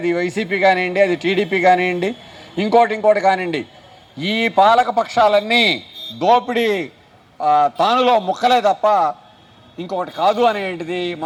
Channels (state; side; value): identical; both; correlation 1.00